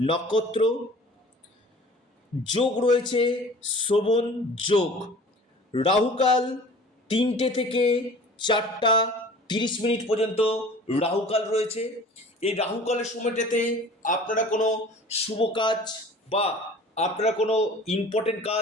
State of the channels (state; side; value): normal; both; correlation 0.45